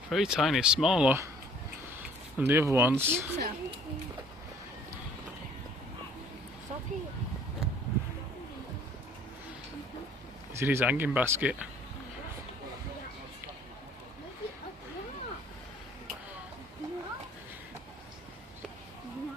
Very tiny, smaller than the other ones. He's in his hanging basket.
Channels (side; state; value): both; normal; correlation 0.55